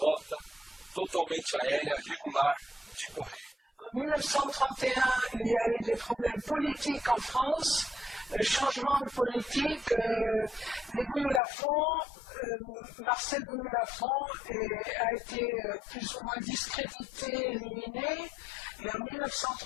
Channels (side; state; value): right; drops out; at 11.4 s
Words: totalmente aérea regular de correio. En 1931, il y a eu des problèmes politiques en France, changement de politique, les Bouillou-Lafont, Marcel Bouillou-Lafont a été plus ou moins discrédité, éliminé, et en